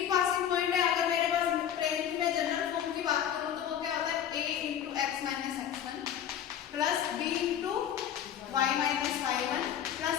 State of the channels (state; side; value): quieter; right; 9.7 dB